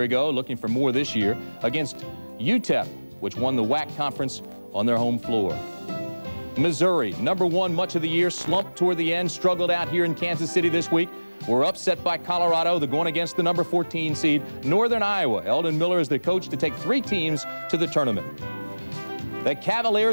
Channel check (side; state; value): both; inverted; correlation -1.00